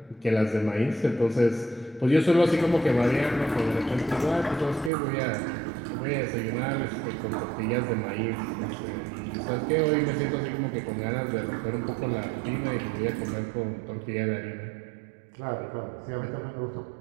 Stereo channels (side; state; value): left; drops out; at 4.9 s